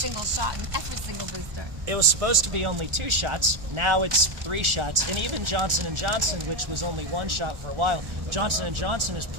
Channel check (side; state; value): left; late; 1.4 ms